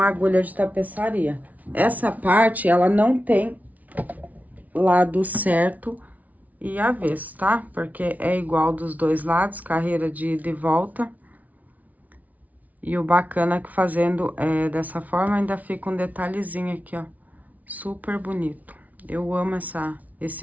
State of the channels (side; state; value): left; late; 0.073 ms